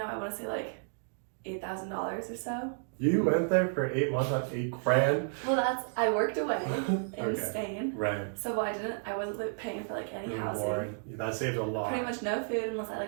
I want to say like $8,000 or so. You went there for 8 months on $8,000. Well, I worked away in Okay. Spain. Rent. So I wasn't like, paying for like any housing. Board. That saved a lot. Pretty much no food unless I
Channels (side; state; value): left; silent; digital silence